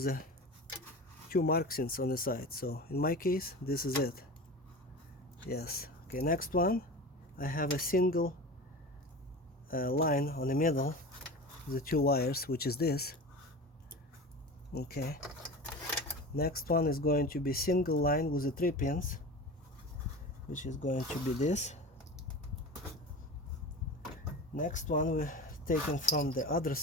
two markings on the side. So in my case, this is it. Yes. Okay, next one, I have a single line on the middle, the two wires, which is this. Okay. Next one is going to be single line with the 3 pins, which is going to be this. Next one we're taken from the other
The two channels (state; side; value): normal; both; correlation 0.31